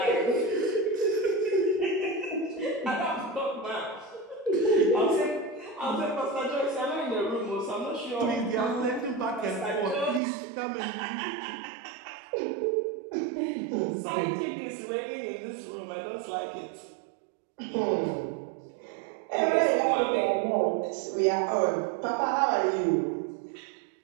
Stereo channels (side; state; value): left; drops out; at 10.2 s